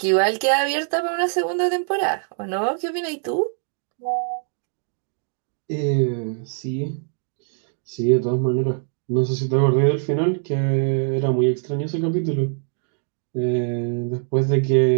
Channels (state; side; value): silent; left; 64 dB below the other